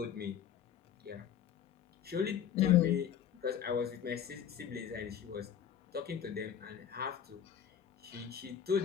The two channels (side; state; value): right; quieter; 9.0 dB